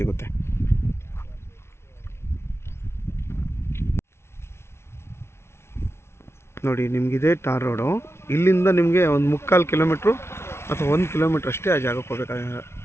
ನೋಡಿ. ನಿಮಗಿದೆ ಟಾರ್ ರೋಡು. ಇಲ್ಲಿಂದ ನಿಮಗೆ ಒಂದು 3/4 ಕಿಲೋಮೀಟ್ರು ಅಥವಾ 1 ಕಿಲೋಮೀಟ್ರ್ ಅಷ್ಟೇ ಆ ಜಾಗಕ್ಕೆ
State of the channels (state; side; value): late; right; 0.12 ms